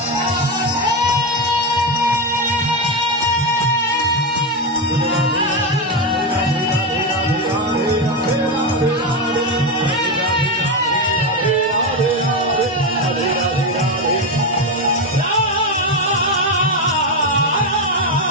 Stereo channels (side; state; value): both; normal; correlation 0.11